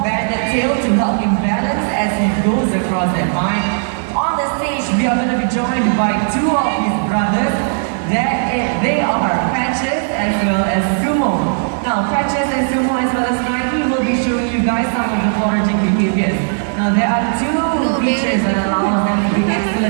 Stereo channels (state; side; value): silent; left; digital silence